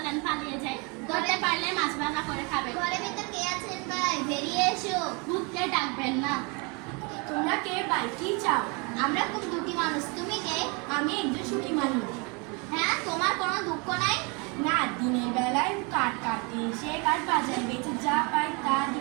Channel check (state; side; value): quieter; left; 31.2 dB